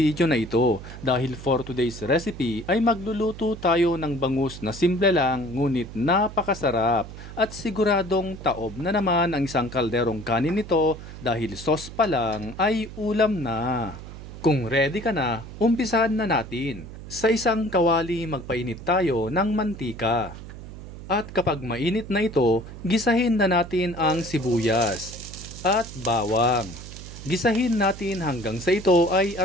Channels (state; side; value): noise; right; hum, 13 dB below the sound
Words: na ito. Dahil for today's recipe ay magluluto tayo ng bangus na simple lang ngunit napakasarap. At siguradong taob na naman ang isang kalderong kanin nito dahil sauce pa lang ay ulam na. Kung ready ka na, umpisahan na natin. Sa isang kawali magpainit tayo ng mantika. At kapag mainit na ito, gisahin na natin ang sibuyas at bawang. Gisahin natin hanggang sa ito ay